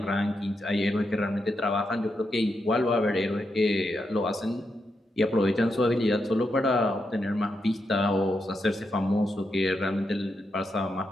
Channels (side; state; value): both; normal; correlation 0.84